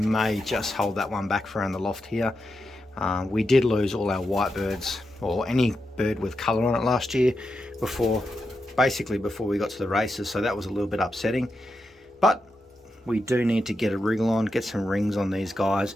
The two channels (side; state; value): both; normal; correlation 0.87